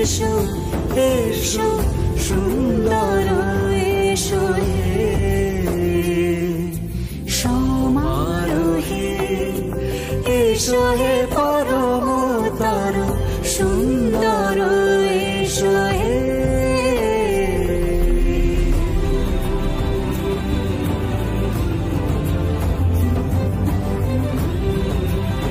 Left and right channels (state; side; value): identical; both; correlation 1.00